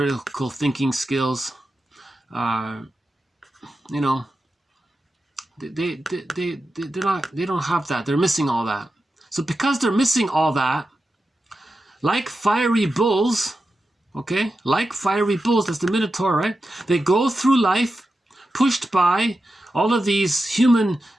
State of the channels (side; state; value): both; normal; correlation 0.91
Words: thinking skills. You know, they don't have that. They're missing all that. So because they're missing all that, like fiery bulls, okay, like fiery bulls, that's the Minotaur, right? They go through life pushed by all of these human